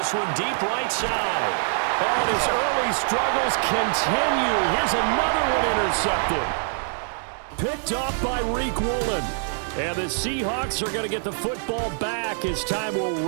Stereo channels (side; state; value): left; silent; digital silence